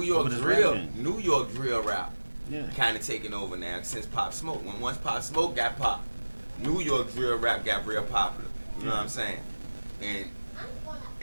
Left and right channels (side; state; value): both; inverted; correlation -1.00